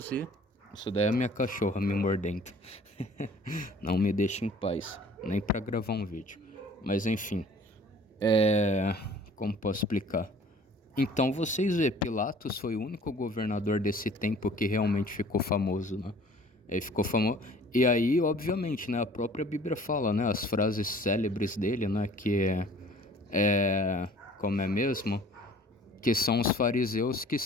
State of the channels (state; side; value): normal; both; correlation 0.51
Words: e... Isso daí é a minha cachorra me mordendo. Não me deixa em paz, nem para gravar um vídeo. Mas enfim, como posso explicar? Então vocês vê, Pilatos foi o único governador desse tempo que realmente ficou famoso, né? Ele ficou famoso. E aí, obviamente, né? A própria Bíblia fala, né? As frases célebres dele, né? Como é mesmo? Que são os fariseus que